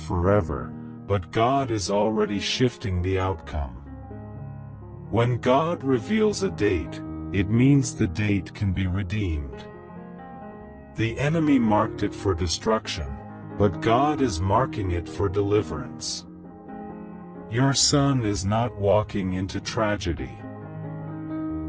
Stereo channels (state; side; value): identical; both; correlation 1.00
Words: forever, but God is already shifting the outcome. When God reveals a date, it means the date can be redeemed. The enemy marked it for destruction, but God is marking it for deliverance. Your son is not walking into tragedy.